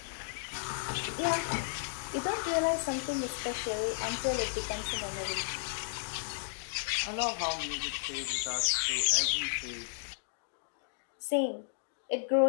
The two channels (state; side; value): silent; right; digital silence